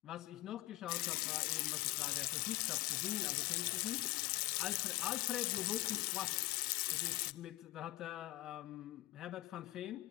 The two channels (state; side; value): quieter; right; 18.8 dB